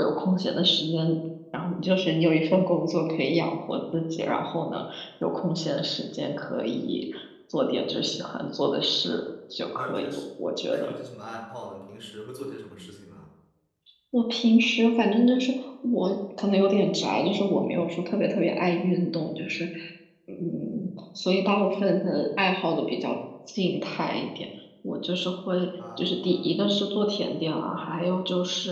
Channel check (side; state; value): both; identical; correlation 1.00